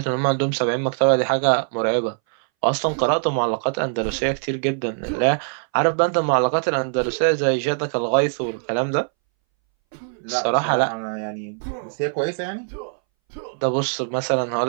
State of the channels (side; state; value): left; silent; 62 dB below the other